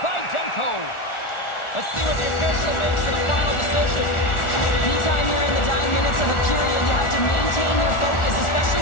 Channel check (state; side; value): late; right; 1.4 ms